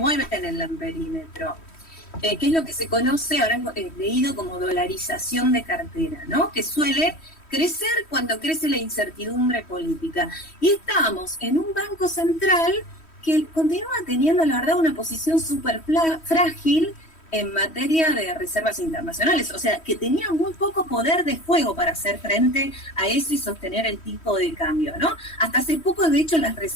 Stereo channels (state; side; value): late; right; 3.1 ms